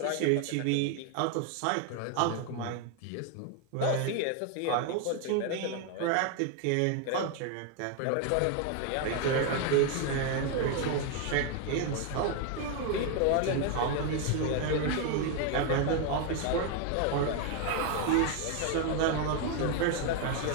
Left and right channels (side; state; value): both; different; correlation 0.01